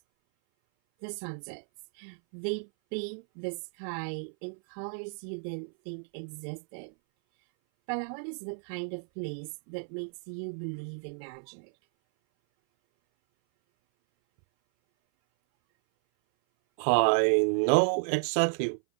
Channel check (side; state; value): left; silent; 56 dB below the other